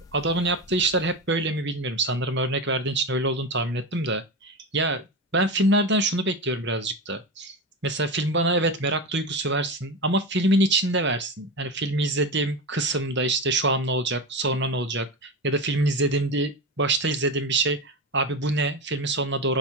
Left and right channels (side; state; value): both; normal; correlation 0.20